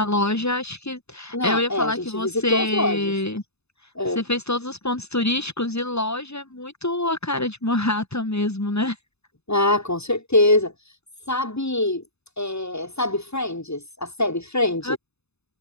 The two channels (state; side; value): late; right; 0.80 ms